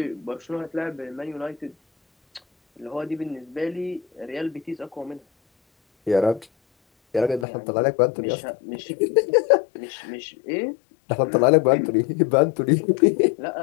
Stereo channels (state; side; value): drops out; right; at 7.5 s